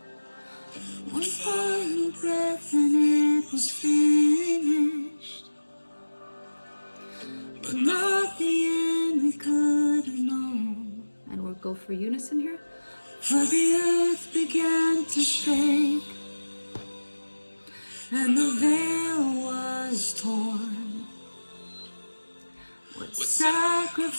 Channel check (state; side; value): inverted; both; correlation -1.00